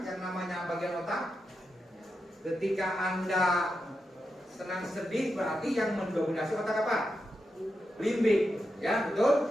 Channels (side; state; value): both; normal; correlation 0.87